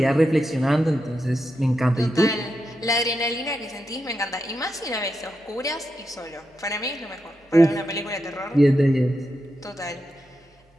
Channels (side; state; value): both; normal; correlation 0.86